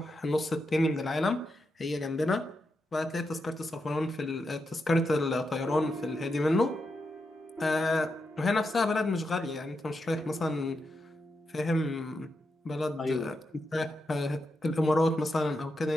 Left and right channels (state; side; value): normal; both; correlation 0.86